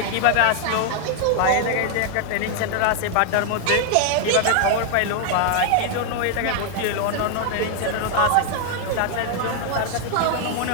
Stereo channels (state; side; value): different; both; correlation 0.00